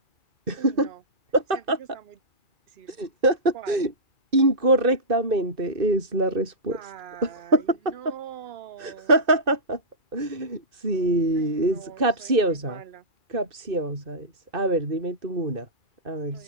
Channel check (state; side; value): late; left; 2.6 ms